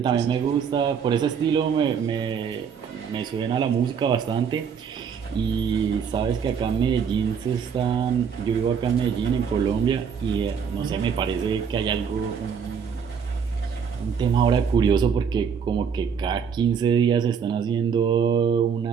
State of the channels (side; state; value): left; quieter; 6.8 dB